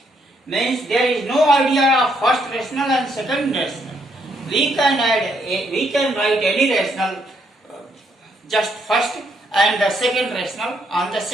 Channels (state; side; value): normal; both; correlation 0.73